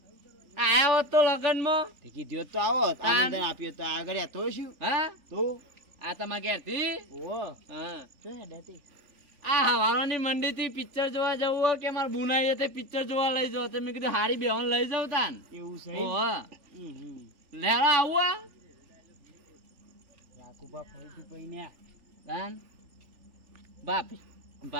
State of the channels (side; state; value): left; late; 3.5 ms